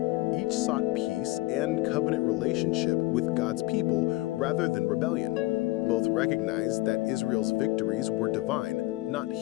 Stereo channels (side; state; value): right; quieter; 20.2 dB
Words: Each sought peace and covenant relationship with God's people rather than rebellion. Both recognized that Israel's victories were divine, not